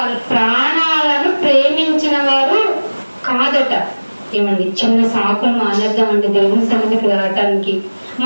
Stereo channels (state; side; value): inverted; both; correlation -1.00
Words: ప్రాణాలను ప్రేమించిన వారు కాదట. ఏమండి చిన్న సాకులు మానేద్దామండి దేవుని సన్నిధికి రావటానికి.